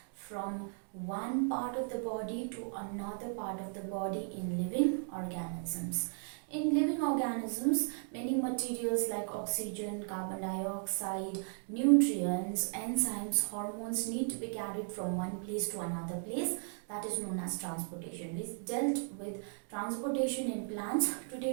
from one part of the body to another part of the body in living organisms. In living organisms, many materials like oxygen, carbon dioxide, nutrients, enzymes, hormones need to be carried from one place to another place. That is known as transportation. We dealt with transportation in plants.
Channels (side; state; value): left; silent; 54 dB below the other